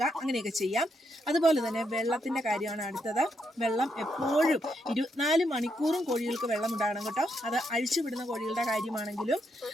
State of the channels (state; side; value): normal; both; correlation 0.79